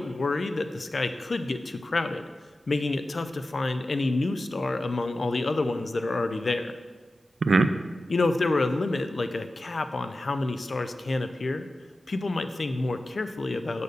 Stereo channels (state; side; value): normal; both; correlation 0.94